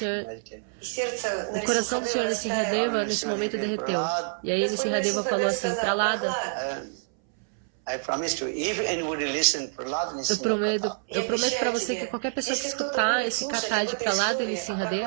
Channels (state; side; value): silent; left; 60 dB below the other